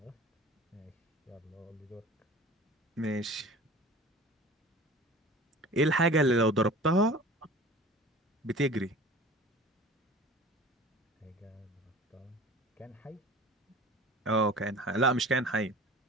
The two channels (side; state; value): both; normal; correlation 0.41